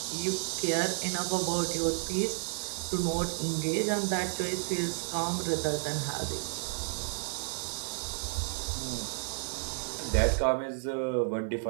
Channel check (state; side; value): silent; left; 57 dB below the other